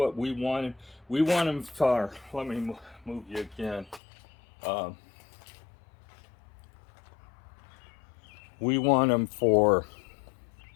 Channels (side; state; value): right; drops out; at 4.0 s